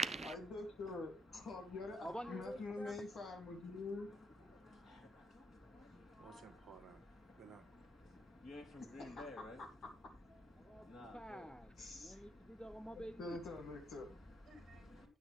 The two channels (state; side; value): normal; both; correlation 0.74